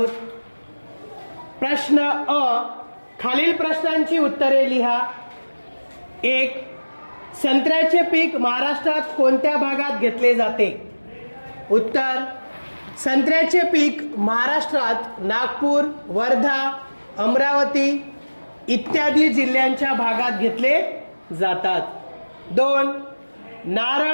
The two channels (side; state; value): both; inverted; correlation -1.00